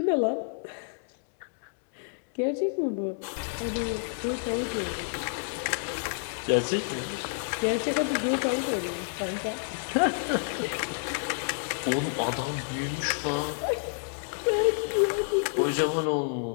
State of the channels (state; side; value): silent; right; digital silence